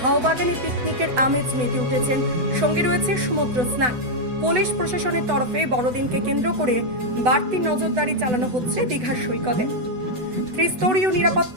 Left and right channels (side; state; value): left; late; 8.0 ms